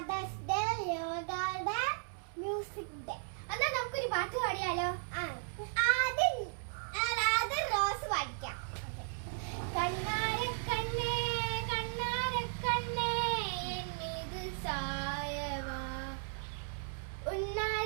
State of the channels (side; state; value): left; silent; digital silence